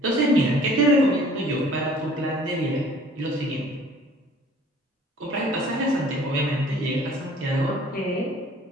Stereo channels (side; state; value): both; normal; correlation 0.52